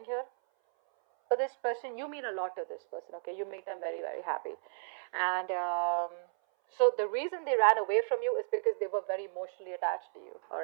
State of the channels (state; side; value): silent; left; 56 dB below the other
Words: here. But this person, you mean a lot to this person, okay? You make them very, very happy. And so the reason they ran away from you is because they were very emotionally attached to you, all